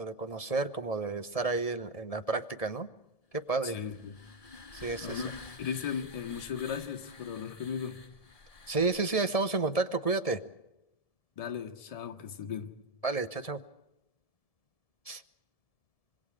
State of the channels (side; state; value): right; late; 1.7 ms